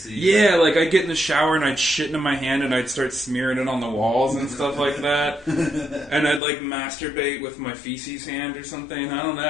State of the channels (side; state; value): right; drops out; at 6.4 s